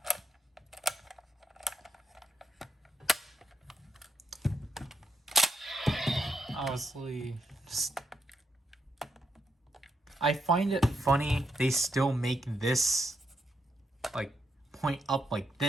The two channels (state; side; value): normal; both; correlation 0.80